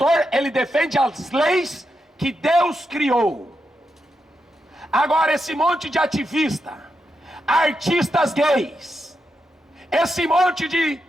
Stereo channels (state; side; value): normal; both; correlation 0.85